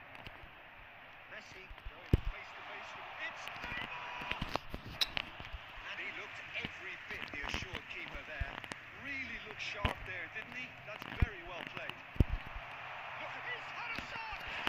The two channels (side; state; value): both; identical; correlation 1.00